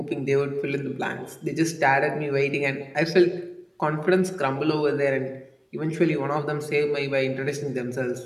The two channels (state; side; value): identical; both; correlation 1.00